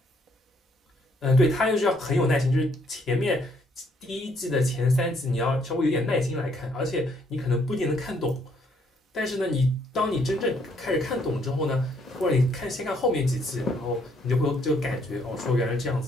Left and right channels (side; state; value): both; normal; correlation 0.68